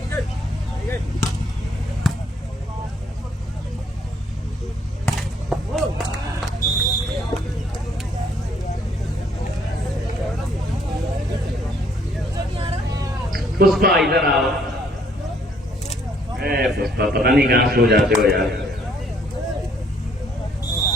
Pushpa इधर आओ। पुष्पा पता नहीं कहां सो जाते हो यार।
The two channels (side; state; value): both; normal; correlation 0.66